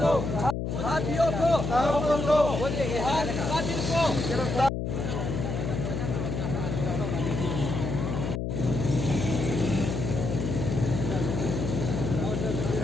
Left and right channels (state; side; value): noise; left; hum, 2 dB below the sound